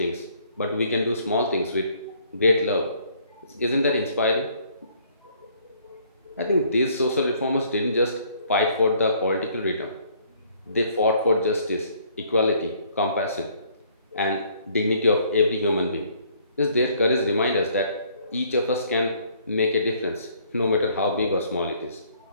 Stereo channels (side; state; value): both; inverted; correlation -0.62